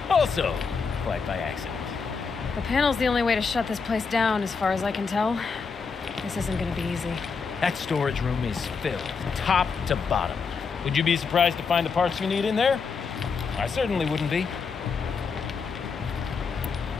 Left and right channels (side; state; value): right; quieter; 5.3 dB